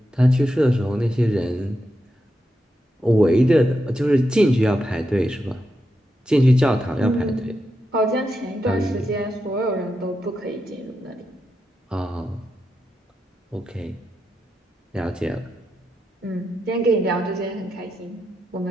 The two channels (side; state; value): both; normal; correlation 0.86